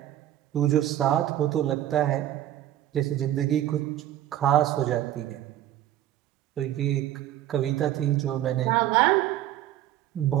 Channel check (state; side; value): quieter; left; 12.8 dB